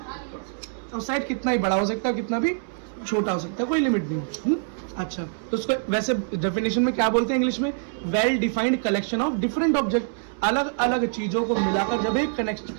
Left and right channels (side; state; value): left; silent; 62 dB below the other